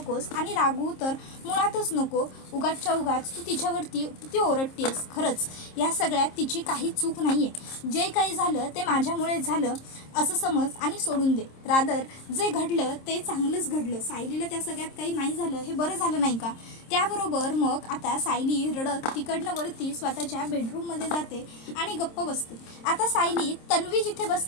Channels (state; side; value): late; right; 26 ms